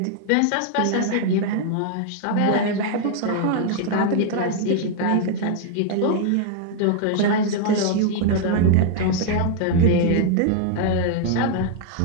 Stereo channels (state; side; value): different; both; correlation 0.00